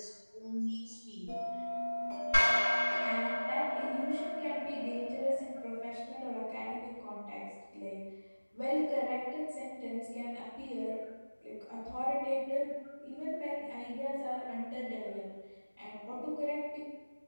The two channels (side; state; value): both; inverted; correlation -1.00